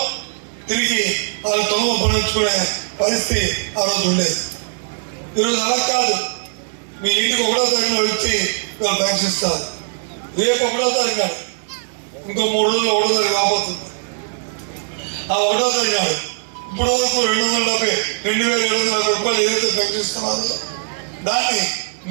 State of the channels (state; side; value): silent; left; 66 dB below the other